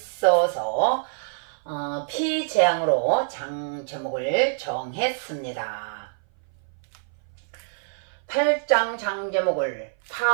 피재앙으로 장 제목을 정했습니다. 8장 장 제목을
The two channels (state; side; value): silent; left; 58 dB below the other